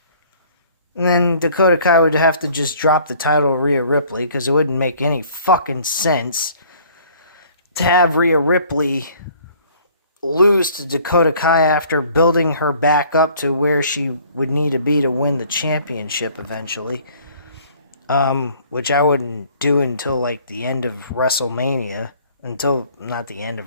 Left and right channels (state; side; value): inverted; both; correlation -0.55